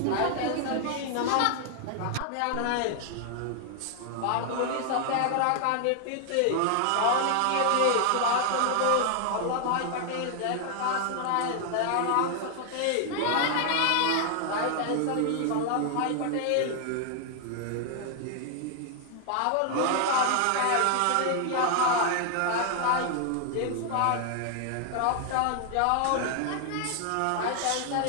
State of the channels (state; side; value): different; both; correlation 0.00